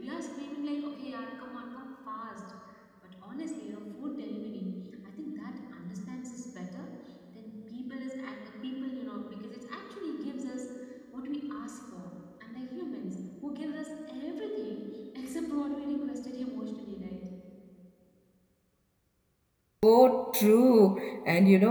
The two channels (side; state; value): both; identical; correlation 1.00